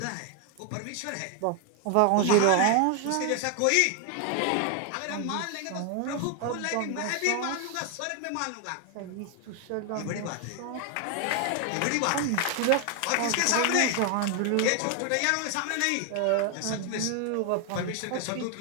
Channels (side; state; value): both; different; correlation 0.01